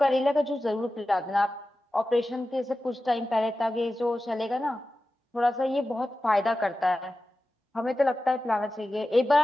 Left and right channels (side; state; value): both; normal; correlation 0.94